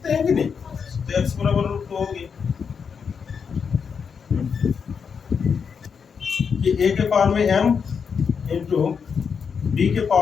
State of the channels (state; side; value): quieter; right; 6.3 dB